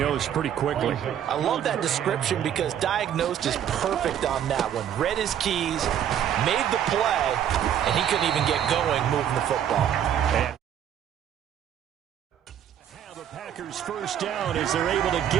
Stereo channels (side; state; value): left; quieter; 9.9 dB